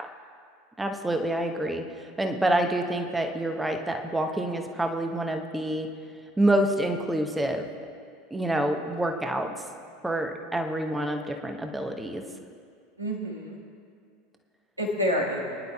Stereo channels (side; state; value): both; normal; correlation 0.70